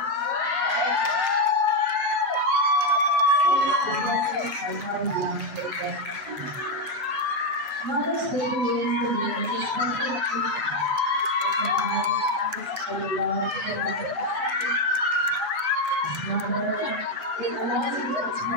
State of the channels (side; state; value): left; late; 7.1 ms